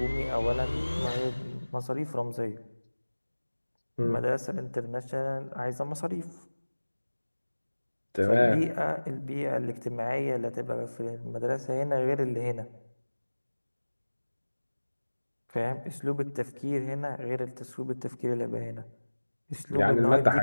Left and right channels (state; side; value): inverted; both; correlation -1.00